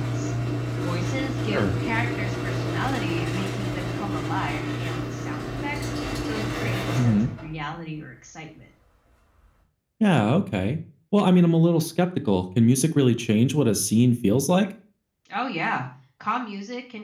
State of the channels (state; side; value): identical; both; correlation 1.00